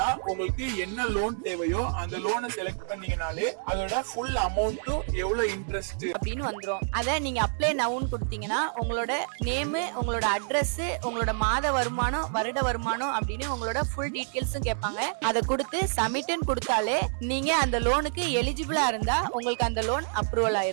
உங்களுக்கு என்ன லோன் தேவையோ அந்த லோனை செலக்ட் பண்ணீங்கனாலே அதோட ஃபுல் அமௌண்ட் எவ்வளவு இன்ட்ரெஸ்ட் அப்படின்னு வந்துரும். அத நீங்க அப்ளை நவுன்னு கொடுத்தீங்கன்னா உங்களோட நேம், உங்களோட அட்ரஸ், உங்களோட மாத வருமானம், வருட வருமானம் அப்படின்னு உங்களோட ஃபுல் டீடைல்ஸும் கேட்பாங்க. அதை கொடுத்து சப்மிட்னு கொடுத்தாலே நீங்க அந்த லோனுக்கு எலிஜிபிளா இருந்தா உங்களுக்கு அந்த லோன் அப்ரூவல்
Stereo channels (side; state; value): left; silent; 59 dB below the other